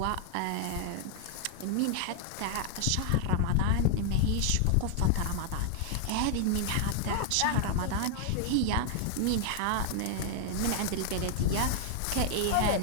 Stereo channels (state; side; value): different; both; correlation 0.00